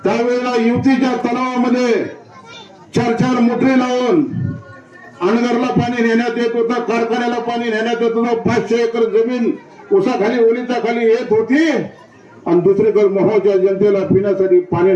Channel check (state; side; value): identical; both; correlation 1.00